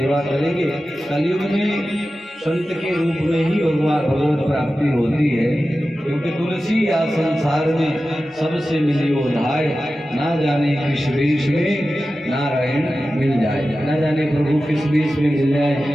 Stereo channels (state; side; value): normal; both; correlation 0.94